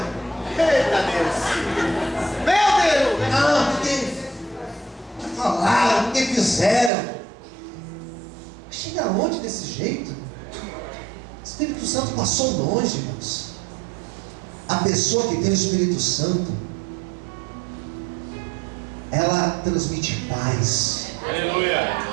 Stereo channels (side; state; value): left; drops out; at 6.9 s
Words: Eita Deus! Meu Deus! Ah, porque falaram, porque fizeram. Chega longe desse jeito. O Espírito Santo passou longe, irmãos. A pessoa que tem o Espírito Santo, ela transmite paz. Aleluia!